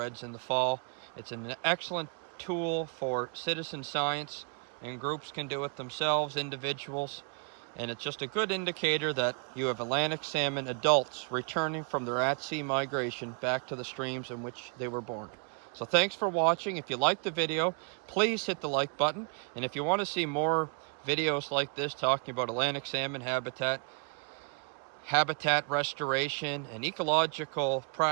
in the fall. It's an excellent tool for citizen science, and groups can do it themselves, individuals. And it's just a good indicator that you have Atlantic salmon adults returning from their at-sea migration back to the streams in which they were born. So thanks for watching. If you liked the video, please hit the like button. And if you want to see more videos like this talking about Atlantic salmon habitat restoration, and ecological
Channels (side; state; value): left; quieter; 38.6 dB